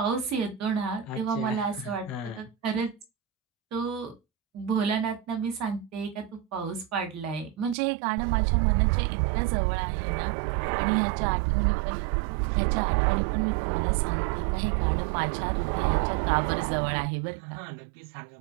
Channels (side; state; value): left; drops out; at 7.8 s